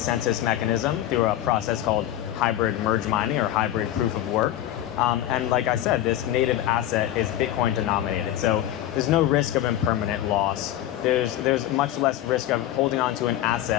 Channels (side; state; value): right; quieter; 12.8 dB